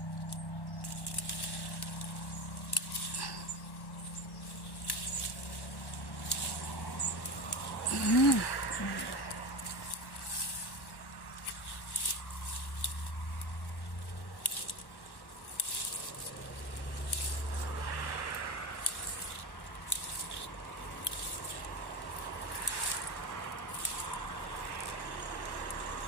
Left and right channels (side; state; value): right; late; 1.1 ms